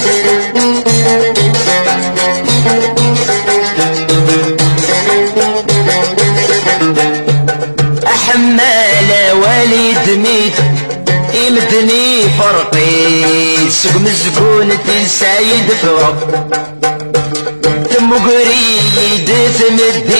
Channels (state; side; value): inverted; both; correlation -1.00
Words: أحمال والد ميت يمدني فرقيت سوق مسكونة السعيد فرق تم قريد